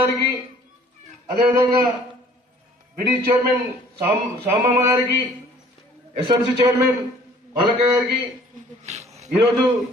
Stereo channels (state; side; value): normal; both; correlation 0.55